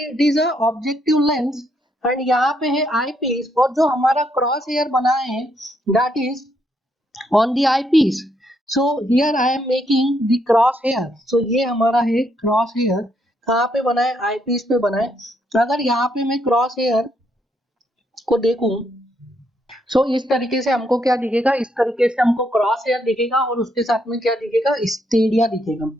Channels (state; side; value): normal; both; correlation 0.75